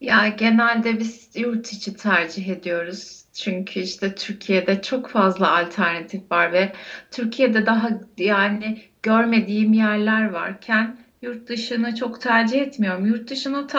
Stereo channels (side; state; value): both; identical; correlation 1.00